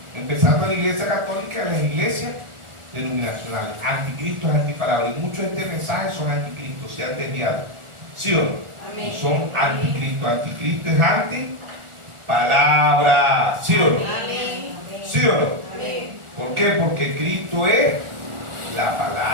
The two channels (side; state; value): left; late; 1.4 ms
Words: empezando en la iglesia católica, en las iglesias denominacionales. Anticristo es antipalabra. Y muchos de este mensaje son anticristos, se han desviado. ¿Sí o no? Amén. Son anticristo. Anticristo es antipalabra. ¿Sí o no? Amén. ¿Sí o no? Amén. ¿Por qué? Porque Cristo es la